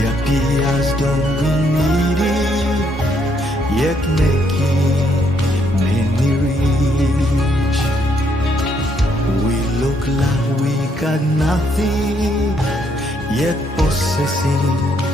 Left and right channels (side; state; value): both; normal; correlation 0.72